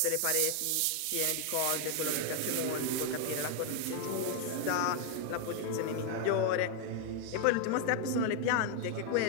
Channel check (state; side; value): different; both; correlation 0.00